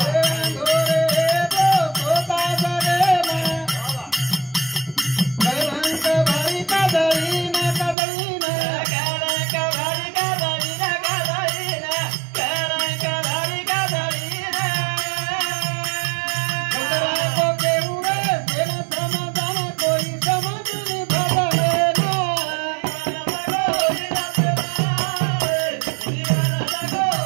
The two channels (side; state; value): left; drops out; at 8.0 s